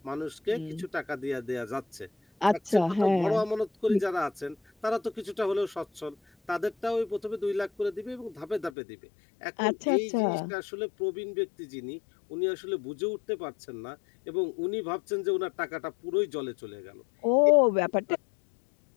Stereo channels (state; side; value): drops out; right; at 8.7 s